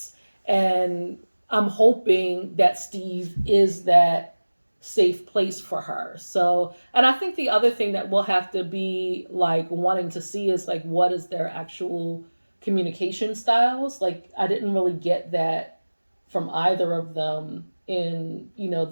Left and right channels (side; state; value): both; inverted; correlation -1.00